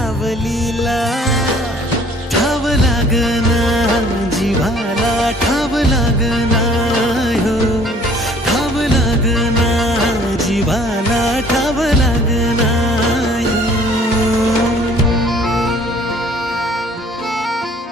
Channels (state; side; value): normal; both; correlation 0.55